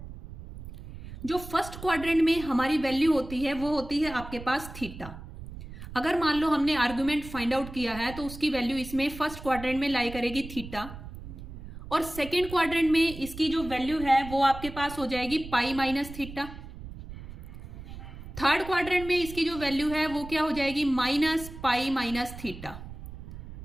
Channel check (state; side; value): noise; right; rumble, 13 dB below the sound